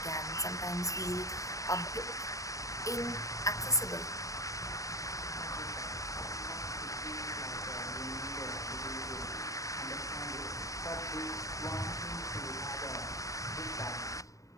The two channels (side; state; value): right; late; 0.16 ms